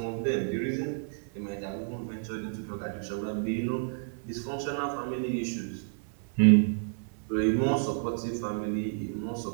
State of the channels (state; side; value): silent; left; digital silence